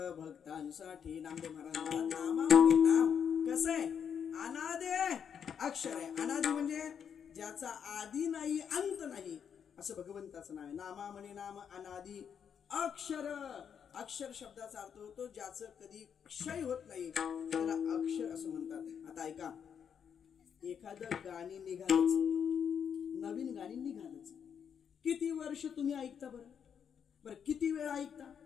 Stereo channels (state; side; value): quieter; right; 7.7 dB